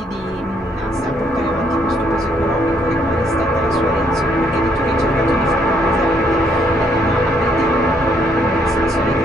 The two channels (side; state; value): both; normal; correlation 0.70